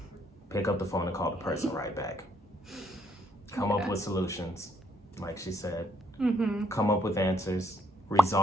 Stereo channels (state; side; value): normal; both; correlation 0.71